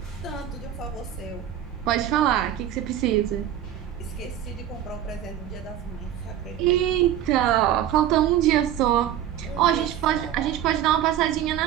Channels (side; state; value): left; quieter; 11.0 dB